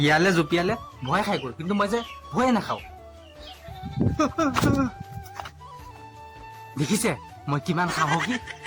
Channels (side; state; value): both; identical; correlation 1.00